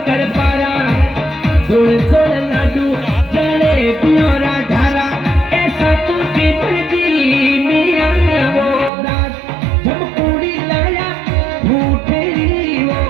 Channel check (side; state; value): left; drops out; at 8.9 s